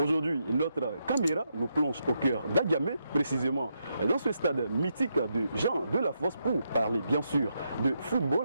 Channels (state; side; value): inverted; both; correlation -0.82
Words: notre caméra nous plonge au cœur d'Agamé, précisément dans ce stade mythique de Jean de la Fosse pour parler bien sûr de